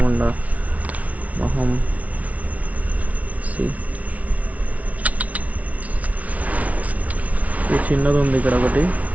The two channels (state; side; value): late; left; 0.068 ms